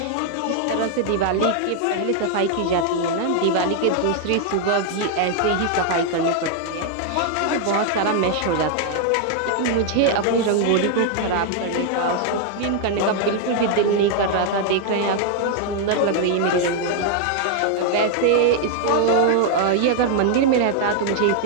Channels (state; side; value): different; both; correlation 0.00